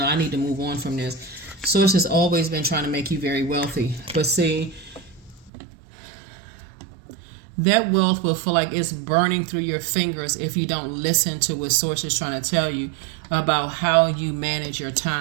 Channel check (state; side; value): drops out; left; at 5.5 s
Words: I need to move on from this. Source has always been trying to make you very wealthy. But see, that wealth will feel like it's burning through your fingers if you don't listen to what Source is trying to tell you about how you manage your